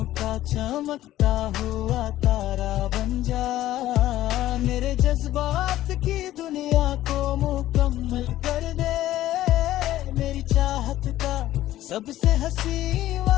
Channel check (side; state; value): right; quieter; 14.2 dB